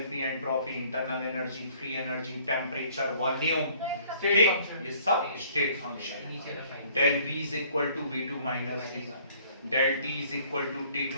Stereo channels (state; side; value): inverted; both; correlation -0.58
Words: entropy, internal energy, free energy, temperature, volume, ठीक, ये सब state function. Del V is equal to V2 minus V, del T is equal to